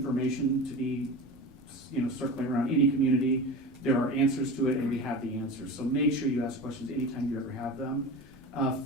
to be, circling around any community. There are answers to it, and we have the answers. So make sure you ask questions anytime you ever have them.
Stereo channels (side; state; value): both; normal; correlation 0.30